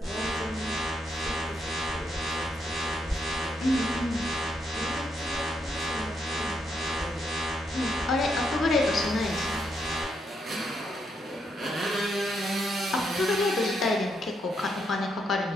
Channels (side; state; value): both; normal; correlation 0.78